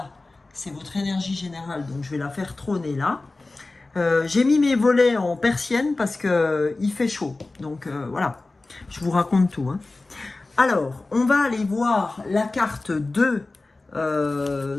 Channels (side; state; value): right; quieter; 3.3 dB